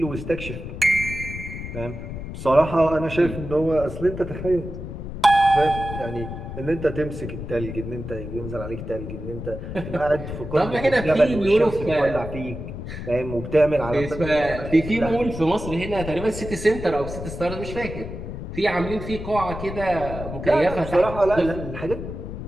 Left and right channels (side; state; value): left; noise; rumble, 8 dB below the sound